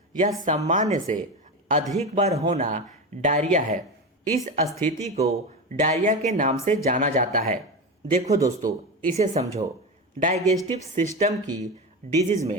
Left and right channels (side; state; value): both; normal; correlation 0.20